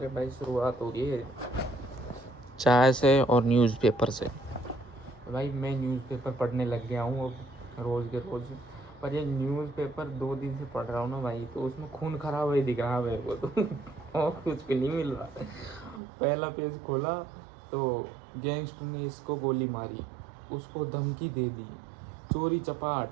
भाई शुरुआत हो गई है चाय से और न्यूज़पेपर से। भाई मैं न्यूज़पेपर पढ़ने लग गया हूँ अब रोज़ के रोज़। पर ये न्यूज़पेपर 2 दिन से पढ़ रहा हूँ ना भाई, तो उसमें खून खराब है दिख रहा है मेरे को तो। और कुछ भी नहीं मिल रहा। पहला पेज खोला तो गैंगस्टर ने इसको गोली मारी, उसको धमकी दे दी, चोरी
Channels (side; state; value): left; drops out; at 16.0 s